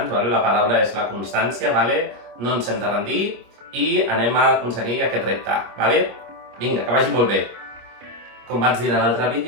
vale? La paraula és la constància, vale? No ens hem de rendir i anem a aconseguir aquest repte, vale? Vinga, que vagi molt bé! Com vaig dir en l'altre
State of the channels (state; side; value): late; left; 25 ms